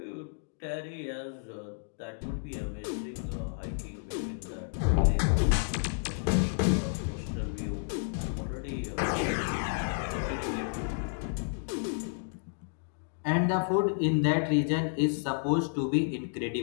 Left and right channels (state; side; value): silent; right; digital silence